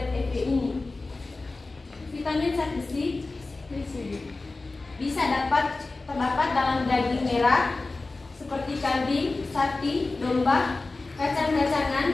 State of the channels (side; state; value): right; quieter; 3.5 dB